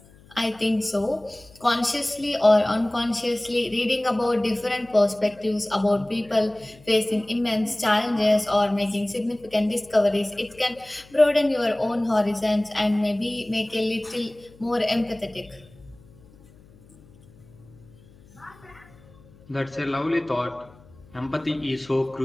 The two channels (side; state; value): left; noise; hum, 25 dB below the sound